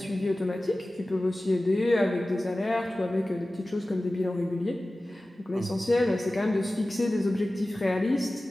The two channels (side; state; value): both; normal; correlation 0.96